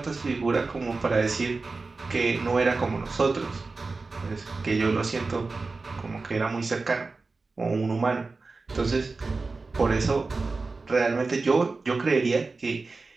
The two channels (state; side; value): quieter; left; 3.9 dB